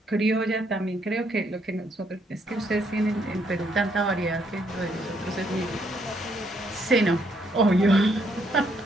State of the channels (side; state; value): both; normal; correlation 0.72